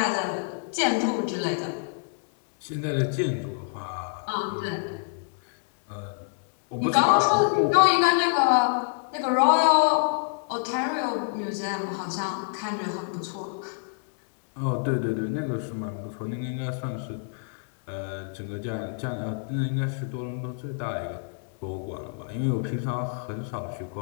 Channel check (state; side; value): silent; right; digital silence